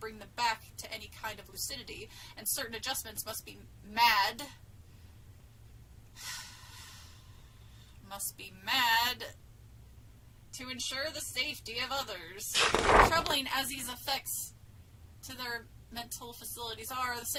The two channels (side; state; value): both; identical; correlation 1.00